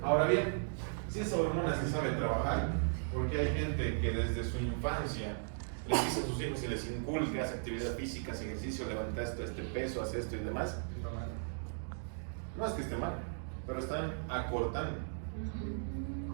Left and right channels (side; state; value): left; silent; digital silence